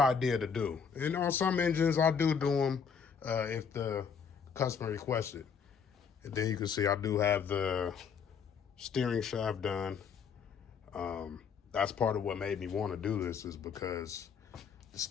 to do. And on some engines, I do them if the customer requests it. And then you can see I do have the steering shaft done. That's part of what made me want to do this, is because the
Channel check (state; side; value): quieter; right; 6.5 dB